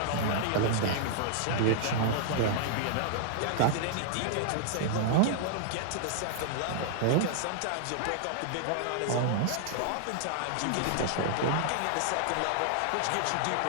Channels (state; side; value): different; both; correlation -0.01